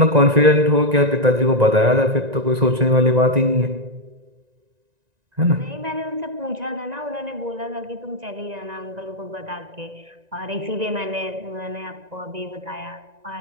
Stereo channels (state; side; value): late; left; 1.9 ms